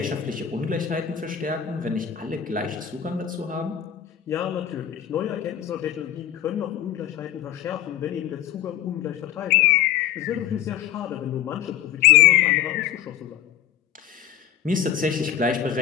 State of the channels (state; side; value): quieter; right; 10.4 dB